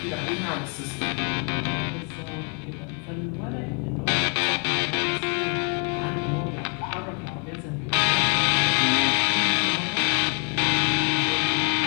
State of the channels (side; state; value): right; quieter; 38.8 dB